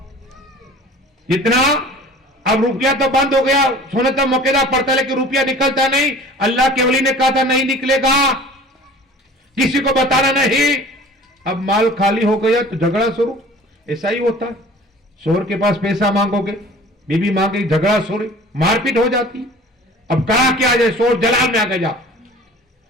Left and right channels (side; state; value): both; normal; correlation 0.45